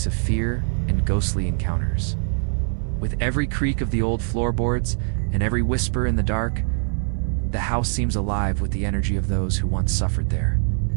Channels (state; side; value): silent; left; 63 dB below the other